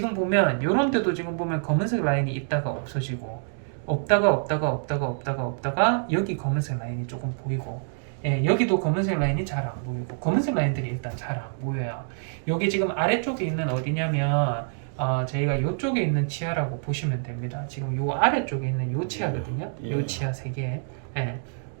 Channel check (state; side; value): silent; left; digital silence